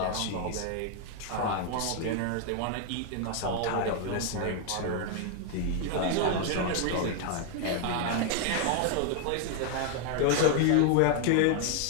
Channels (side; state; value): both; different; correlation 0.00